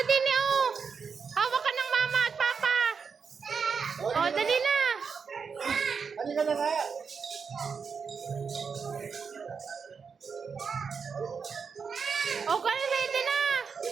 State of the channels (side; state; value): left; quieter; 5.8 dB